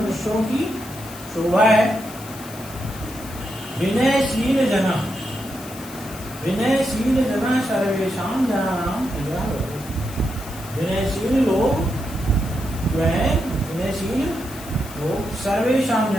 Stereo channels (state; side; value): noise; left; hiss, 16 dB below the sound